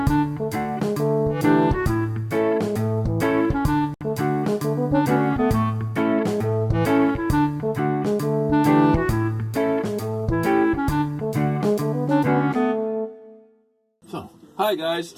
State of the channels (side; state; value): both; identical; correlation 1.00